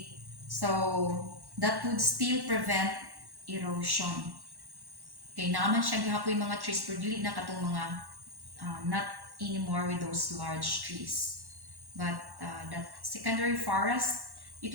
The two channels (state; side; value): late; left; 1.1 ms